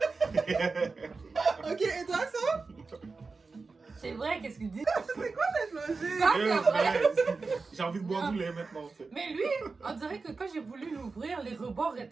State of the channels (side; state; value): left; quieter; 4.2 dB